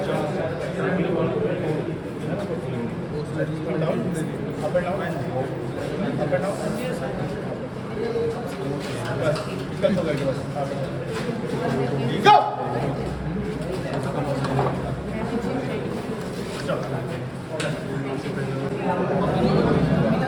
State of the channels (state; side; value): identical; both; correlation 1.00